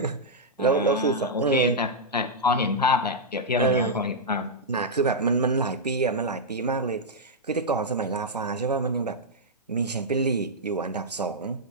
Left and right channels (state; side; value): normal; both; correlation -0.07